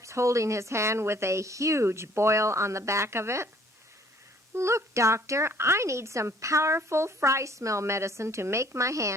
holding his hand with a huge boil on the back of it. "Look, Doctor, I need some powerful fry smell medicine to make my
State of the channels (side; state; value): both; normal; correlation 0.58